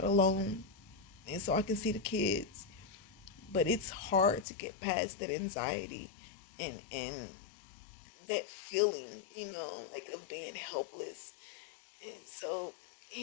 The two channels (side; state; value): right; drops out; at 4.5 s